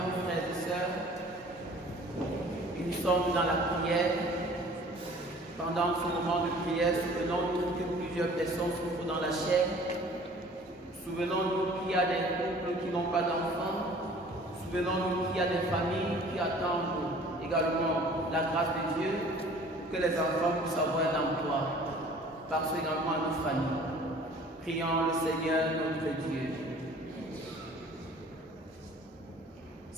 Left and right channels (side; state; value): both; normal; correlation 0.50